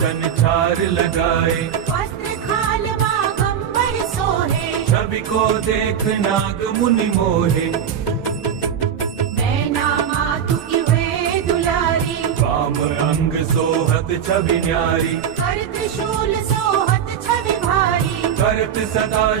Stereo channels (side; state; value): left; quieter; 8.4 dB